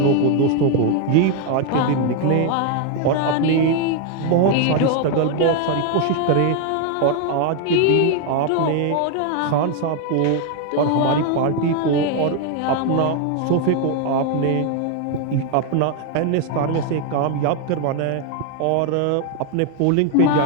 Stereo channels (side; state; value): both; different; correlation 0.01